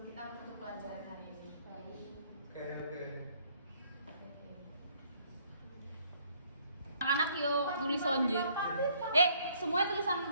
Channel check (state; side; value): inverted; both; correlation -0.64